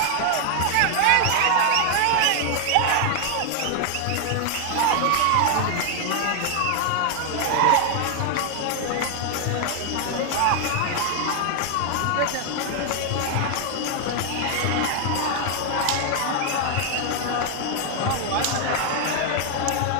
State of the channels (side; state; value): both; different; correlation 0.00